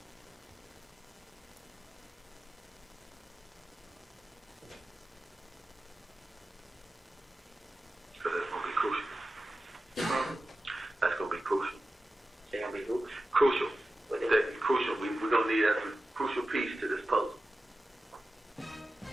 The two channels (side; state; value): both; normal; correlation 0.93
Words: Because that's going to be crucial. That's going to be crucial. They're going to be who? Crucial. That's crucial. We're going to need that crucial piece to this puzzle.